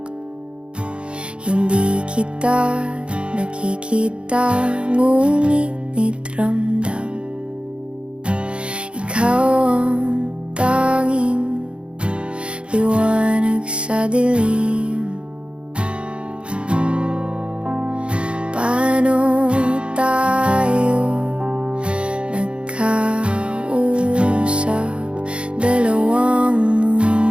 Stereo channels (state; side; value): late; left; 0.057 ms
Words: Hindi kita nakikita, ngunit ramdam. Ikaw ang tanging liwanag sa dilim. Paano tayo nagkausap? Dalawang